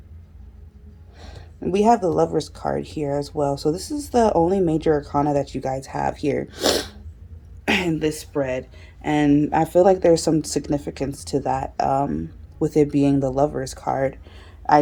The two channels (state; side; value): identical; both; correlation 1.00